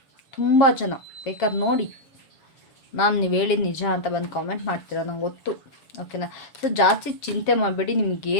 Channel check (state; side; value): late; right; 7.3 ms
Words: ತುಂಬ ಜನ ಬೇಕಾದ್ರೆ ನೋಡಿ, ಮ್ಯಾಮ್ ನೀವು ಹೇಳಿದ ನಿಜ ಅಂತ ಬಂದು ಕಾಮೆಂಟ್ ಮಾಡ್ತೀರಾ, ನಂಗೆ ಗೊತ್ತು. ಓಕೆನಾ? ಸೊ ಜಾಸ್ತಿ ಚಿಂತೆ ಮಾಡಬೇಡಿ.